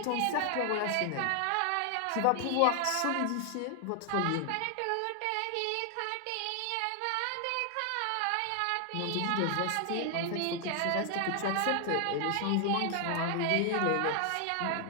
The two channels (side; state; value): both; different; correlation 0.00